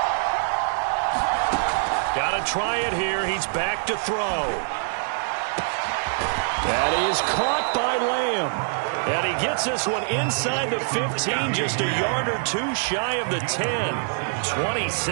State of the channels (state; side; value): silent; left; digital silence